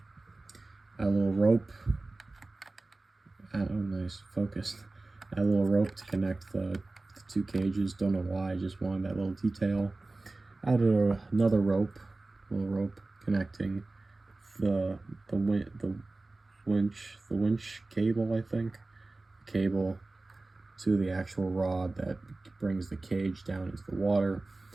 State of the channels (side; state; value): left; quieter; 3.2 dB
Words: add a little rope. Oh, nice, focused. Add a little rope to connect the two cages. Don't know why, I just wanted that little detail. Added another little rope connecting the winch cable, I think, cable to the actual rod that brings the cage down into the water,